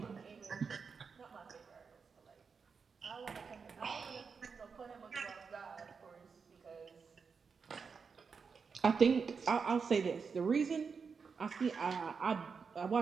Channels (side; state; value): left; quieter; 5.5 dB